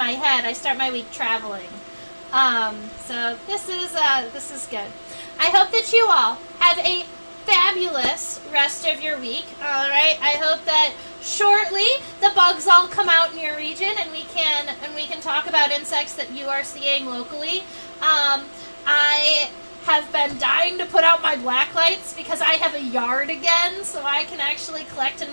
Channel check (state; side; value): inverted; both; correlation -1.00